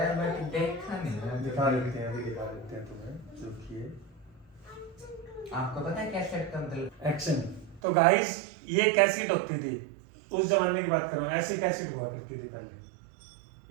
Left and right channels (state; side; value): drops out; left; at 7.8 s